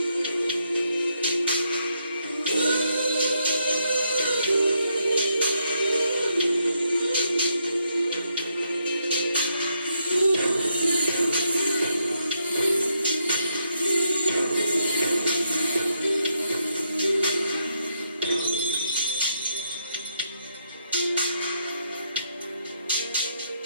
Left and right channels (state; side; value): inverted; both; correlation -0.78